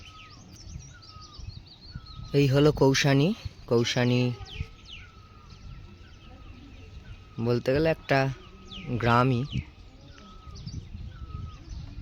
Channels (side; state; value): both; identical; correlation 1.00